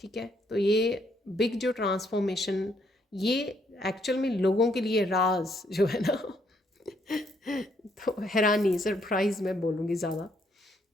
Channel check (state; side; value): normal; both; correlation 0.71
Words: है, तो ये बिग जो ट्रांसफॉर्मेशन, ये एक्चुअल में लोगों के लिए राज जो है ना तो हैरानी, सरप्राइज मैं बोलूँगी ज़्यादा।